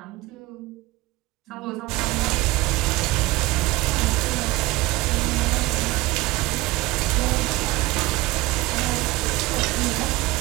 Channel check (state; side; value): quieter; left; 20.0 dB